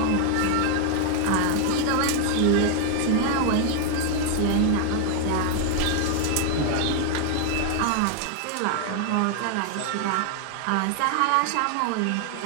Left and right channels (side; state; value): both; different; correlation 0.00